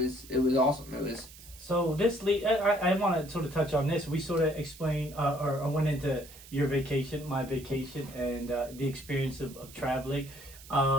awesome. It was. So I want to sort of touch on this. We sort of explained or went into your vacation, my vacation, and the experience of traveling.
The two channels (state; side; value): noise; right; hiss, 19 dB below the sound